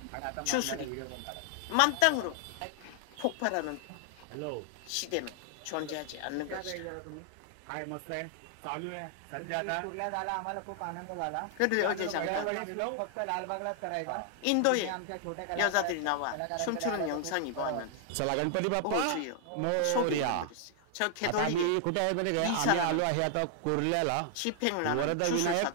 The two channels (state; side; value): different; both; correlation 0.00